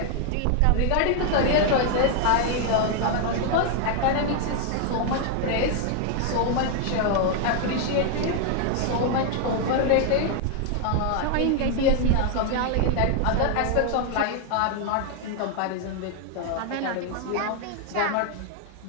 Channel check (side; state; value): both; different; correlation 0.00